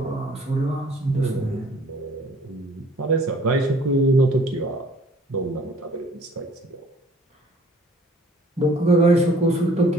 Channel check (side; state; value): both; normal; correlation 0.55